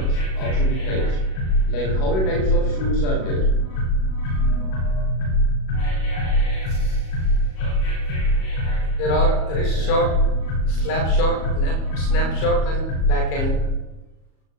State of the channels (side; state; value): right; late; 37 ms